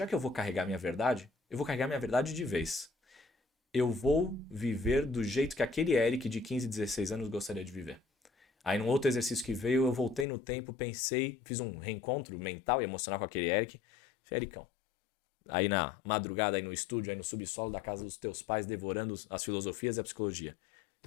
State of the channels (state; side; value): drops out; right; at 10.2 s